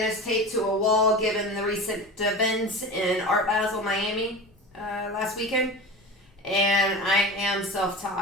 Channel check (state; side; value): normal; both; correlation 0.31